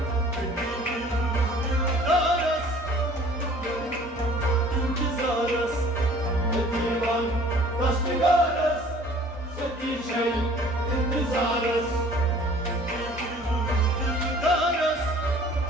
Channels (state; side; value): normal; both; correlation 0.50